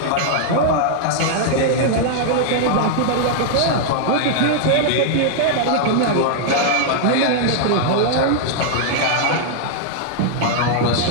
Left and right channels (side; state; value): both; different; correlation -0.01